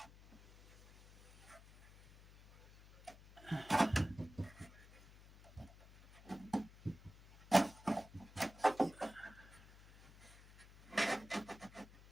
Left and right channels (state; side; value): noise; left; hum, 21 dB below the sound